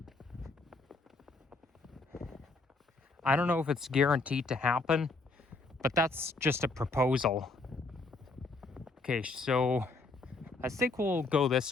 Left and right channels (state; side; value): quieter; right; 3.4 dB